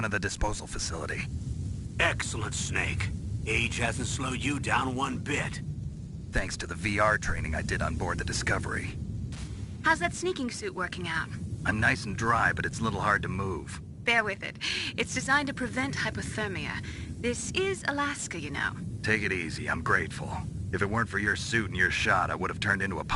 of the disposal facility. Excellent, Snake. Age hasn't slowed you down one bit. Thanks to the VR training I did on board the Discovery. How's that sneaking suit working out? I'm nice and dry, but it's a little hard to move. Bear with it. It's designed to prevent hypothermia. This is Alaska, you know. Take it easy, I'm grateful. If it weren't for your suit and your shot, I would have turned into a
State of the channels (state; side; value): identical; both; correlation 1.00